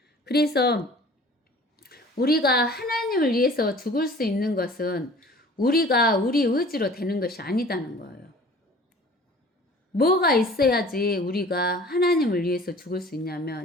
그래서 우리가 하나님을 위해서 죽을 수 있는 것은 우리가 우리 의지로 되는 것이 아니다는 거예요. 뭐가 있어야지 우리가 하나님을 위해서 죽을 수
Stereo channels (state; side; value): normal; both; correlation 0.46